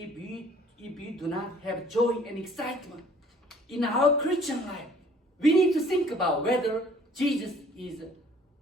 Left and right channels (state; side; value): normal; both; correlation 0.56